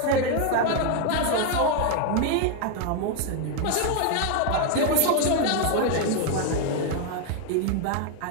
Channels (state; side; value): different; both; correlation 0.01